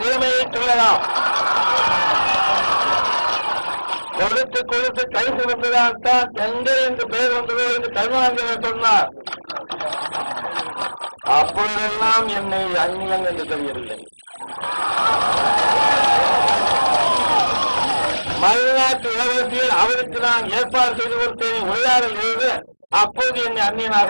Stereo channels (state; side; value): inverted; both; correlation -1.00